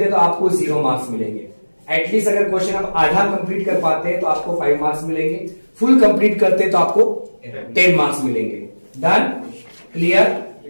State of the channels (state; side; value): inverted; both; correlation -1.00